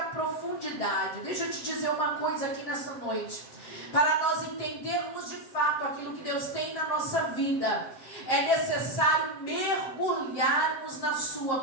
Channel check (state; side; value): late; right; 7.4 ms